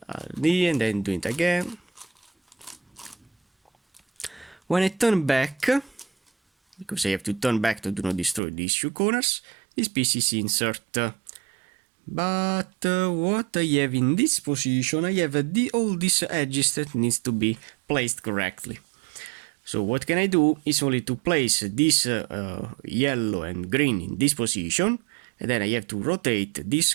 and then do it again. When I turn back, because I have to turn back to do not destroy these two corners, this piece is insert. But what I have in this position, I have all these edges that needs to be placed correctly. So what can I do is only to place this yellow and green in this position, and then I have to rotate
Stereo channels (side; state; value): left; drops out; at 8.4 s